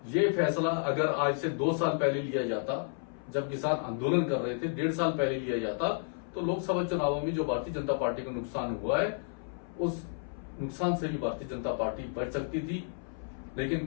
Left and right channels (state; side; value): silent; right; 57 dB below the other